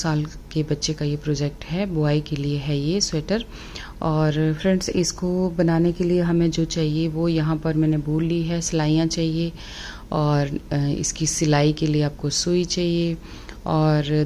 के बच्चे का ये प्रोजेक्ट है, बॉय के लिए है ये स्वेटर। और फ्रेंड्स, इसको बनाने के लिए हमें जो चाहिए वो यहाँ पर मैंने वूल ली है, सिलाइयाँ चाहिए, और इसकी सिलाई के लिए आपको सुई चाहिए, और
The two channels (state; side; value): identical; both; correlation 1.00